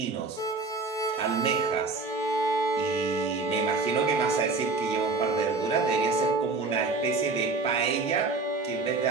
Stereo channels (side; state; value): left; quieter; 3.8 dB